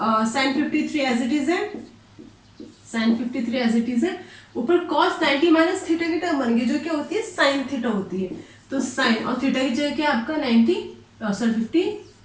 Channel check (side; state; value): both; identical; correlation 1.00